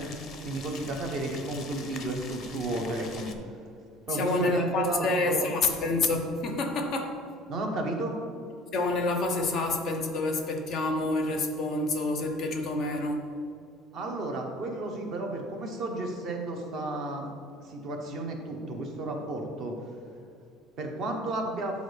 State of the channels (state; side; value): normal; both; correlation 0.48